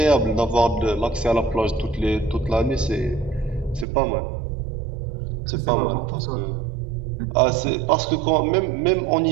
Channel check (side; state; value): left; drops out; at 3.9 s